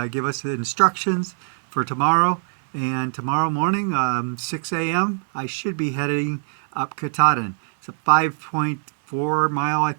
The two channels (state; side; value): silent; left; digital silence